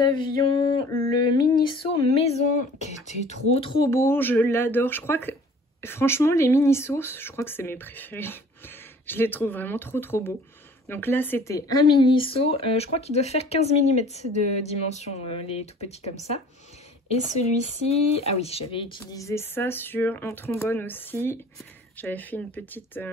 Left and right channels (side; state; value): both; normal; correlation 0.50